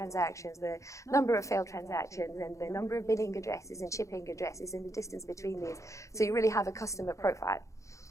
the number of failed transactions, and the number of billing addresses and shipping addresses and the distance between these. So you really have a customer profile.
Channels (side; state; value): right; late; 0.15 ms